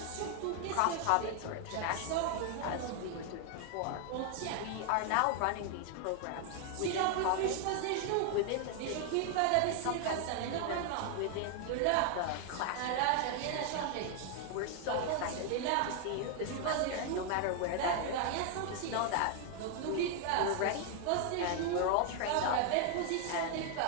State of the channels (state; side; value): different; both; correlation 0.00